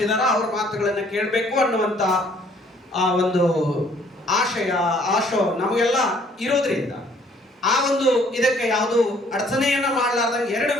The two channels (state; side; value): normal; both; correlation 0.61